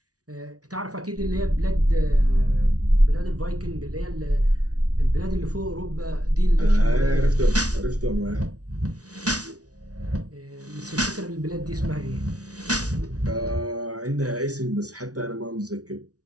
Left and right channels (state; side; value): late; left; 0.68 ms